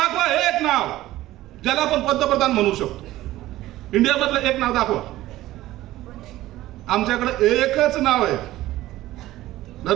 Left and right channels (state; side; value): quieter; left; 15.8 dB